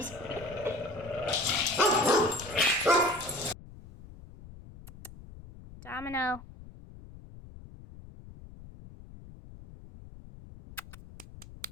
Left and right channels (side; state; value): left; noise; rumble, 17 dB below the sound